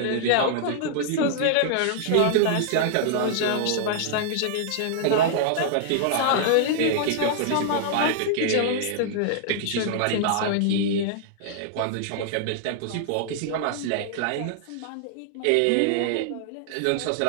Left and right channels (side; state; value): both; different; correlation -0.01